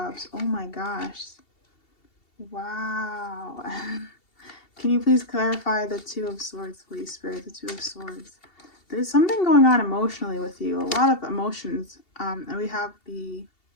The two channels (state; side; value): late; right; 2.7 ms